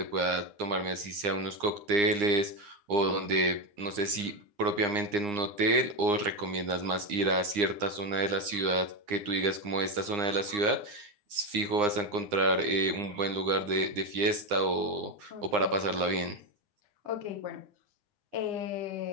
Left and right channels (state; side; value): late; left; 9.8 ms